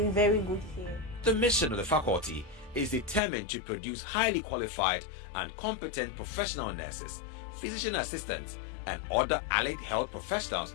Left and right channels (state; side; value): drops out; right; at 3.2 s